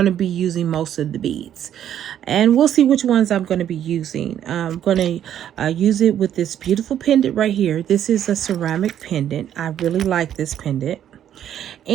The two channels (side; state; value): left; quieter; 10.4 dB